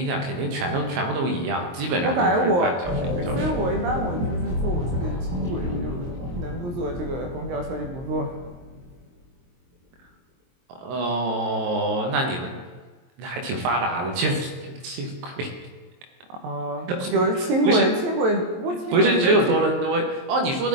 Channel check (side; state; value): left; late; 23 ms